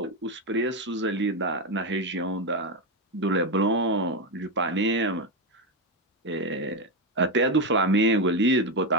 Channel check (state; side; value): normal; both; correlation 0.10